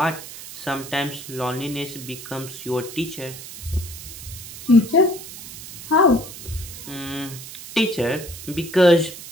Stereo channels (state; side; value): noise; right; hiss, 13 dB below the sound